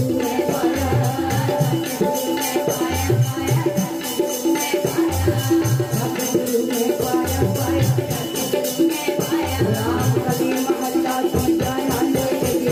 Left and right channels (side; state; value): both; identical; correlation 1.00